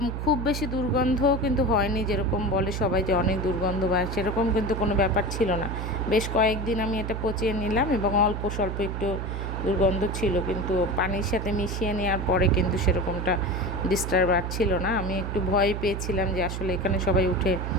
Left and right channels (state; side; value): noise; right; hum, 4 dB below the sound